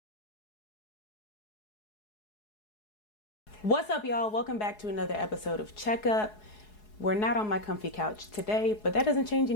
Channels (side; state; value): right; late; 4.7 ms